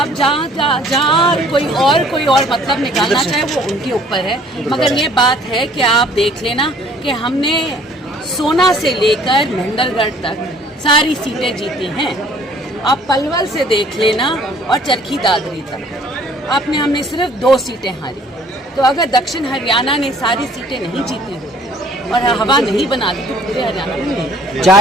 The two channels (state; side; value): normal; both; correlation 0.57